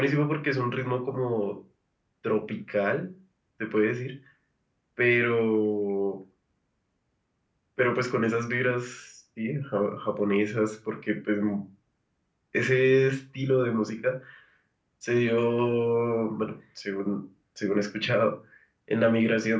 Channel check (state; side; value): identical; both; correlation 1.00